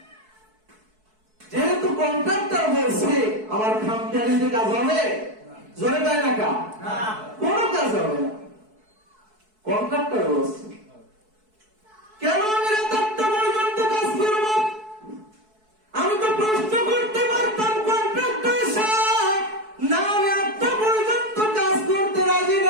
যেহেতু কন্ট্রাক্টর বলছে আমার খামখেয়ালিতে কাজ হবে, জোরে তাই না কা? কোনো কাজ হবে না, কন্ট্রাক্টর বলছে। কেন আমি রাত 8টা পর্যন্ত কাজ করব? আমি তো প্রশ্ন করতে পারতাম কন্ট্রাক্টর সাহেব, না আমি 8টা পর্যন্ত কাজ করতে রাজি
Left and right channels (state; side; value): late; left; 4.6 ms